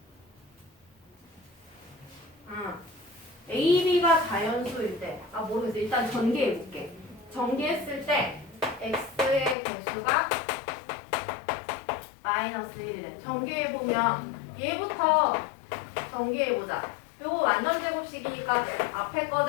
a, b가 자연수일 때, 모르겠어. 일단 전개해볼게. 전개했을 때 x의 개수가 마이너스 1이래. 전개해보면 얘부터 전개해보자. 요거 완전 제곱식이니까 앞에 거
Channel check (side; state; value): right; drops out; at 9.6 s